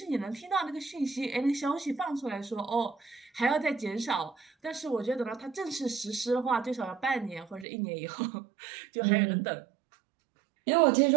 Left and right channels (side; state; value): left; drops out; at 7.7 s